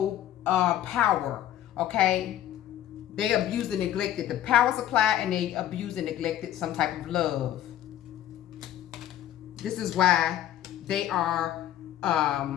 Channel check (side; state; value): right; quieter; 12.0 dB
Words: power, Okay? They abused and neglected the power supply, and they abused and neglected some type of love. This is why they are